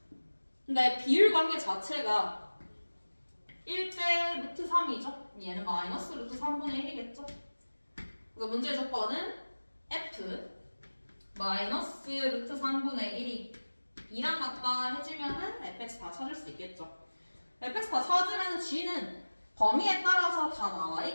근데 비율 관계 자체가 1대 루트 3이죠. 얘는 마이너스 루트 3분의 1이겠죠. 그래서 문제의 조건은 F 마이너스 루트 3분의 1이 2랑 같다 해주면은 fx 다 찾을 수 있겠죠. fx 다 찾으면 g는 범위에 따라서 다 나와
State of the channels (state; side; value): inverted; both; correlation -1.00